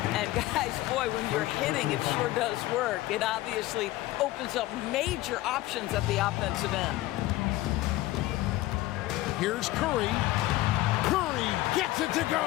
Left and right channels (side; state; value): right; quieter; 17.1 dB